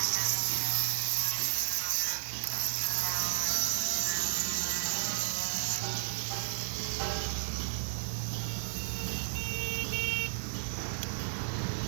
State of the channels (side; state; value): left; silent; digital silence